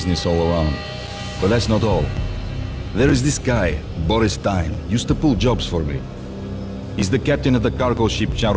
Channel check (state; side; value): identical; both; correlation 1.00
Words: all around. But that's not all. There is this guy, Boris Stein, used to pull jobs for me. He's the captain of the cargo ship